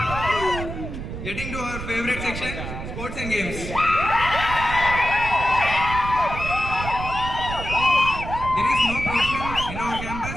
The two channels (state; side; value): noise; right; rumble, 7 dB below the sound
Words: Getting to our favorite section, sports and games. There is no provision in our